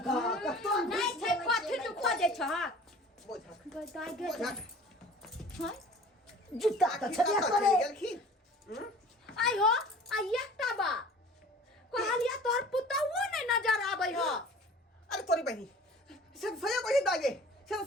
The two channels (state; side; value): normal; both; correlation 0.45